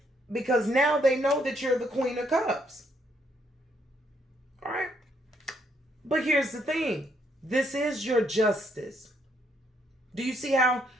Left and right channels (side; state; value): both; normal; correlation 0.72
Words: Because now they know that you're the Queen of Cups, all right? But here's the thing. This is your justice. Do you see a